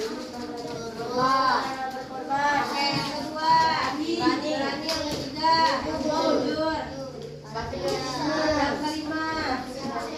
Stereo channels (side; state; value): both; identical; correlation 1.00